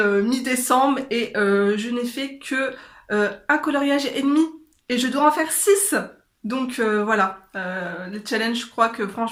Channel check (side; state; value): both; identical; correlation 1.00